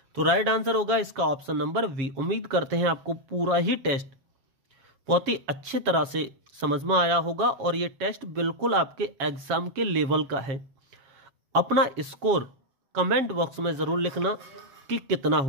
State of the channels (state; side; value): late; left; 7.3 ms